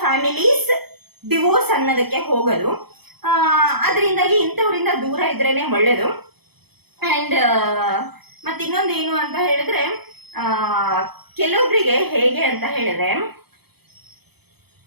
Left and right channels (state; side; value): late; left; 0.97 ms